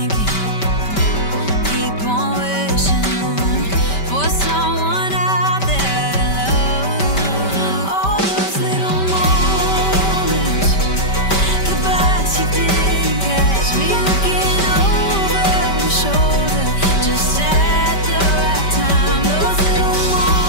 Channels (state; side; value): late; right; 5.2 ms